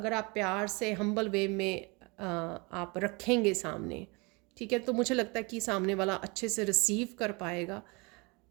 आप प्यार से हम्बल वे में आप रखेंगे सामने, ठीक है, तो मुझे लगता है कि सामने वाला अच्छे से रिसीव कर पाएगा।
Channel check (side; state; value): left; quieter; 28.1 dB